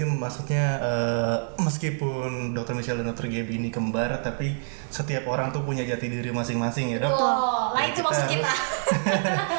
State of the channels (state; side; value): silent; left; 61 dB below the other